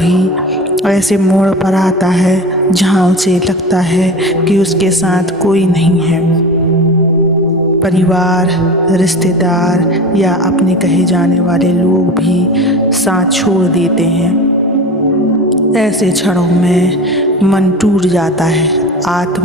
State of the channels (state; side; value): normal; both; correlation 0.32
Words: ऐसे मोड़ पर आता है जहाँ उसे लगता है कि उसके साथ कोई नहीं है। परिवार, रिश्तेदार या अपने कहे जाने वाले लोग भी साथ छोड़ देते हैं। ऐसे क्षणों में मन टूट जाता है,